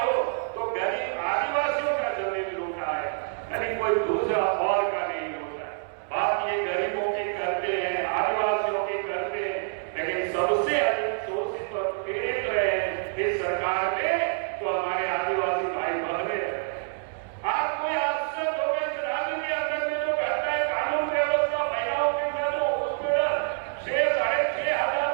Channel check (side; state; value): left; silent; 60 dB below the other